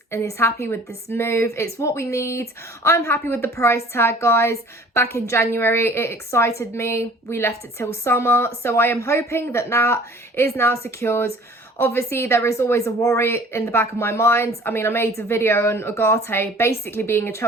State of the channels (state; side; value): normal; both; correlation 0.50